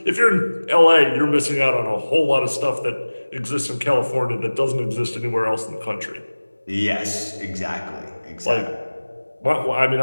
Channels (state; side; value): inverted; both; correlation -1.00